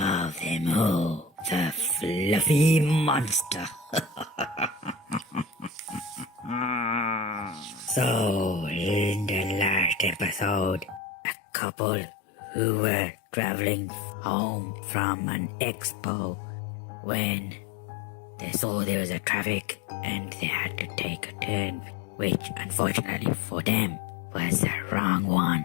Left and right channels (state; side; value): drops out; right; at 11.0 s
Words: them all, the Fluffy Monster. So, in the last episode, a couple who were traveling home from an expo when they saw there was a traffic and they had to take a turn, which unfortunately for them was the wrong one.